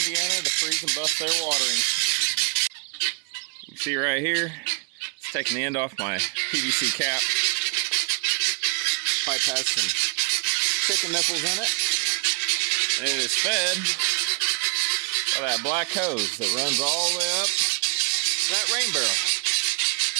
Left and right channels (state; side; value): quieter; left; 34.8 dB